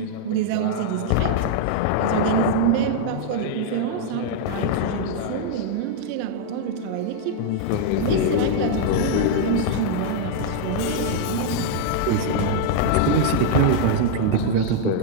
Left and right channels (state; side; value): different; both; correlation -0.01